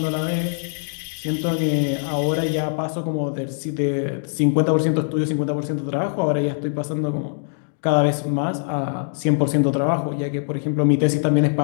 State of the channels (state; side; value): silent; right; digital silence